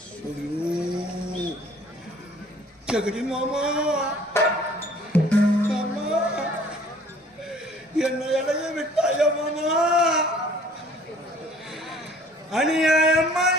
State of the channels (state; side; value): normal; both; correlation 0.54